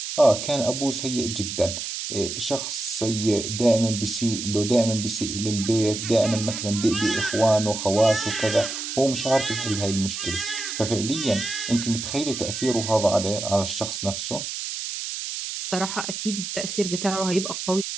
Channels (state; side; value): noise; right; hiss, 5 dB below the sound